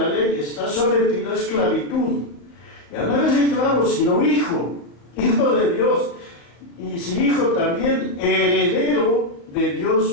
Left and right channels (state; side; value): late; right; 35 ms